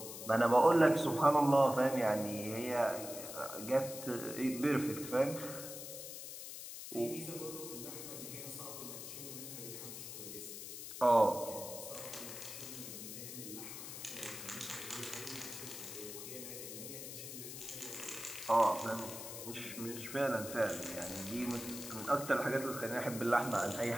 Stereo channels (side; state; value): left; noise; hiss, 9 dB below the sound